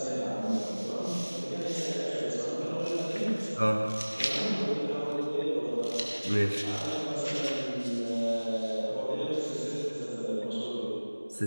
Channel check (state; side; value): inverted; both; correlation -1.00